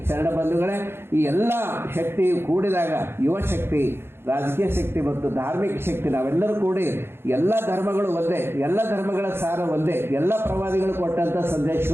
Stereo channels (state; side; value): late; left; 0.11 ms